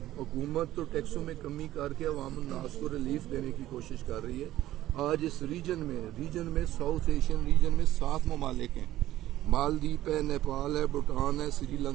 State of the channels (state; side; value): quieter; left; 14.3 dB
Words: حکومت تو ٹیکسوں میں کمی کر کے عوام الناس کو ریلیف دینے کی کوشش کر رہی ہے۔ آج اس ریجن میں ساؤتھ ایشین ریجن میں 7 ممالک ہیں، مالدیپ ہے، نیپال ہے، بھوٹان ہے، سری